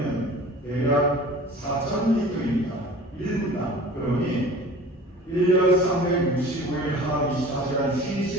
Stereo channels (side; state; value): both; normal; correlation 0.43